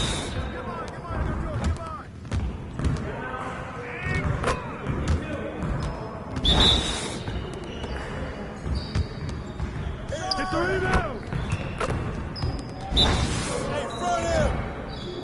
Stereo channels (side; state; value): both; identical; correlation 1.00